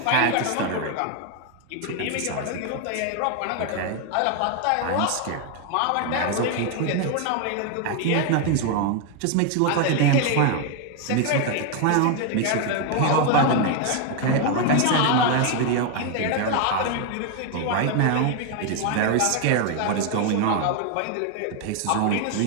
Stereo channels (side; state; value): both; different; correlation 0.01